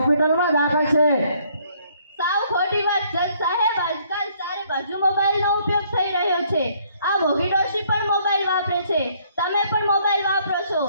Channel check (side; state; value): both; inverted; correlation -0.65